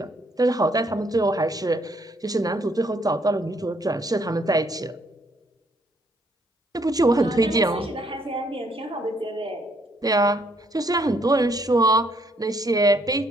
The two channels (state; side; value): normal; both; correlation 0.69